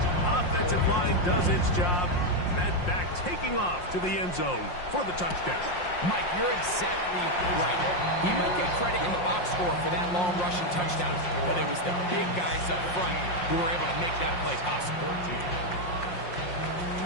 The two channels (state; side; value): late; right; 5.6 ms